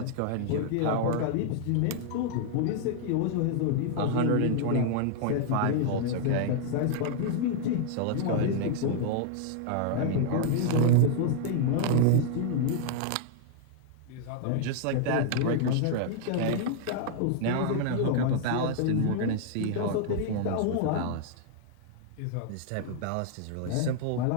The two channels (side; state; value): both; different; correlation -0.01